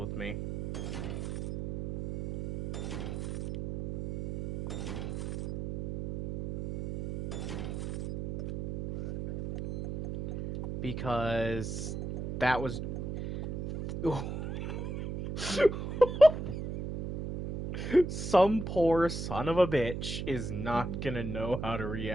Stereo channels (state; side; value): noise; right; hum, 5 dB below the sound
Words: me. Because that was... Some poor son of a bitch is not gonna know how to